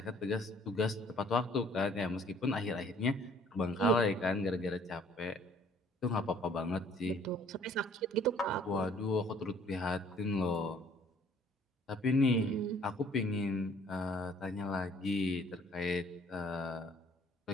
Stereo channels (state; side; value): normal; both; correlation 0.58